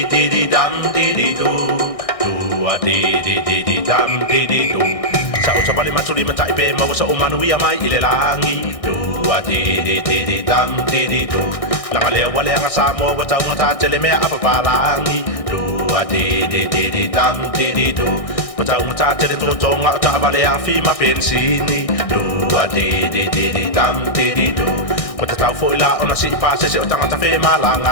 dee dee dum dee dee do. Do a dee dee dee dee dum dee dee do. Sa o sabali matuli matai pe mau sa umanu ia mai ile langi. Do a dee dee dee dee dum dee dee do. Langa lea wale anga sa mo wa tau ngata tele mea apa palangi. Do a dee dee dee dee dum dee dee do. Patau ngata tele tolo tonga ta vale a fi ma pensini. Do a dee dee dee dee dum dee dee do. Wata tau fo ila ona si pa se se o tangata fe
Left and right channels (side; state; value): right; late; 1.6 ms